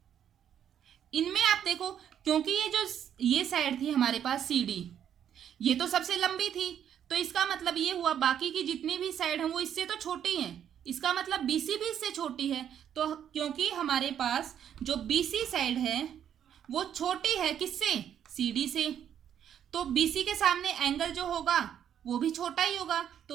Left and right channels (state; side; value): quieter; left; 9.4 dB